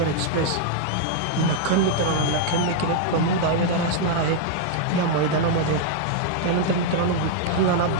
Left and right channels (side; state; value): both; different; correlation 0.00